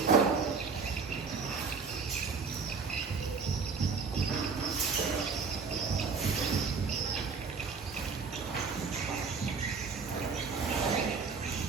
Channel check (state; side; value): quieter; left; 5.1 dB